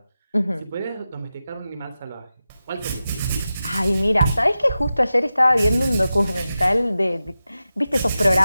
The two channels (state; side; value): inverted; both; correlation -0.93